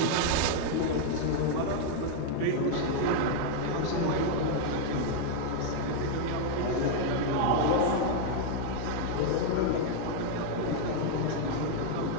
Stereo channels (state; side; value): different; both; correlation 0.00